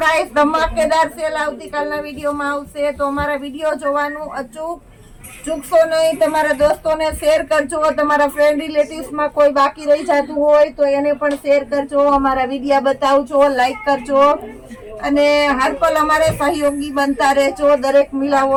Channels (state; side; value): identical; both; correlation 1.00